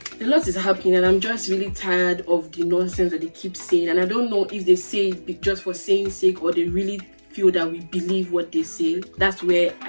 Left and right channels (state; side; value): inverted; both; correlation -1.00